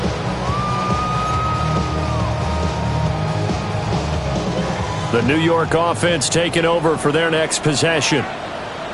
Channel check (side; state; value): both; identical; correlation 1.00